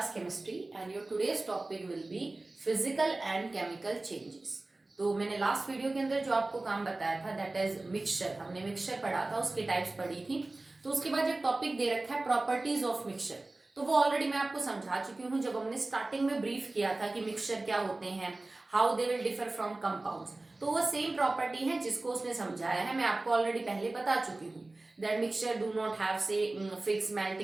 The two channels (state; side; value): quieter; left; 3.0 dB